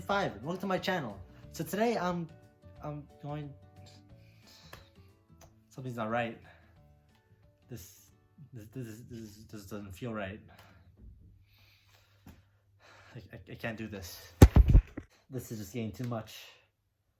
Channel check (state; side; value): identical; both; correlation 1.00